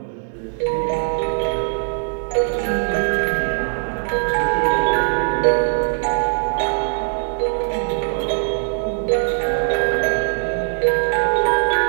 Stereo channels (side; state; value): left; silent; digital silence